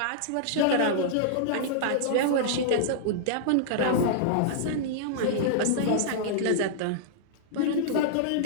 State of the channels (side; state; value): both; different; correlation -0.02